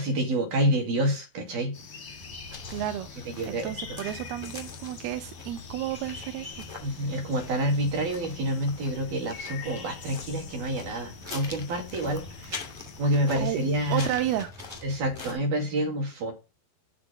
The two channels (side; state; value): left; late; 11 ms